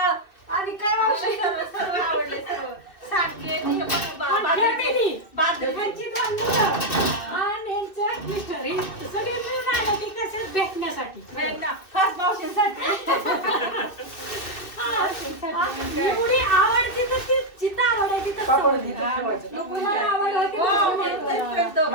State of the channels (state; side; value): late; right; 2.6 ms